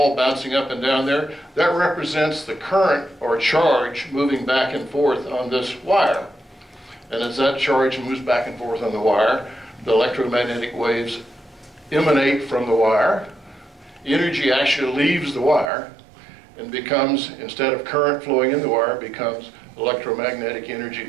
bouncing up and down there. That represents the current or charge moving back and forth on this wire. And as that charge moves back and forth on the wire, the electromagnetic waves emanate from the wire. Energy actually leaves the wire and becomes, instead of current flowing in the wire, becomes electromagnetic energy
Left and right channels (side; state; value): left; drops out; at 15.7 s